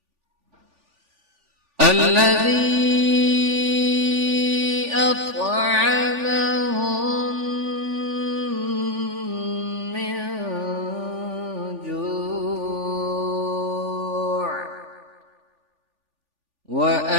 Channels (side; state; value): left; late; 3.4 ms